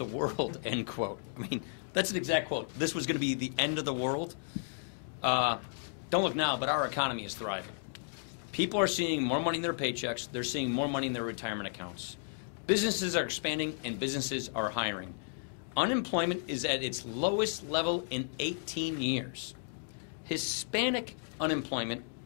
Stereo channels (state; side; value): silent; right; digital silence